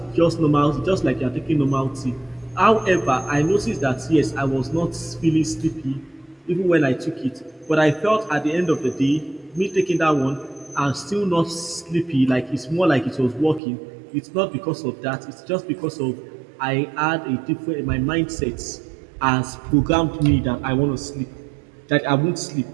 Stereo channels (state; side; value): drops out; left; at 13.6 s